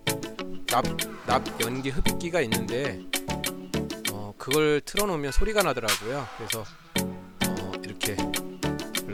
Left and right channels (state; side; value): identical; both; correlation 1.00